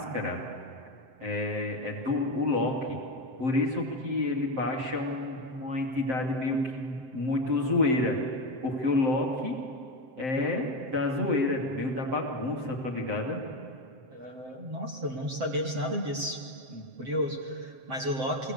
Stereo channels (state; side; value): late; left; 7.7 ms